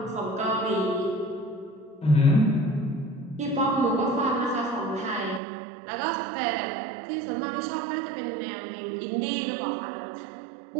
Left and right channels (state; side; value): drops out; left; at 5.4 s